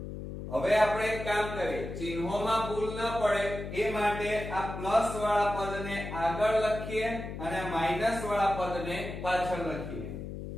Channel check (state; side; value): noise; left; hum, 8 dB below the sound